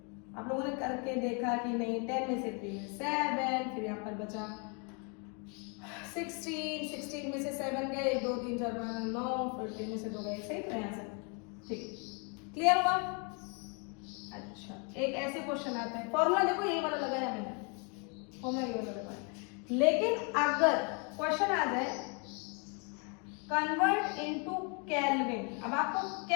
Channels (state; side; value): quieter; right; 35.4 dB